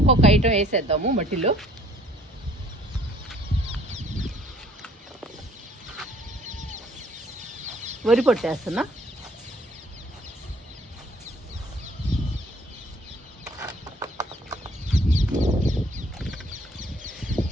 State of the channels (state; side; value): normal; both; correlation 0.59